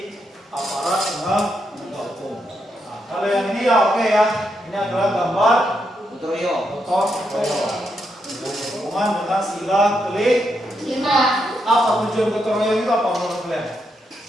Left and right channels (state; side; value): normal; both; correlation 0.81